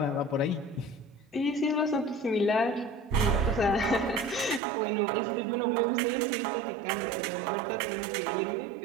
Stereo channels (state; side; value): drops out; left; at 4.6 s